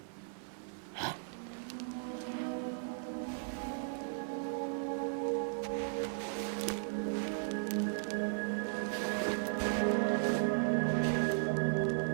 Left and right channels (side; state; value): left; silent; digital silence